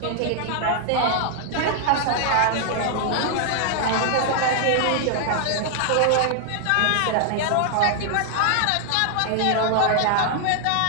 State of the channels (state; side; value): different; both; correlation 0.00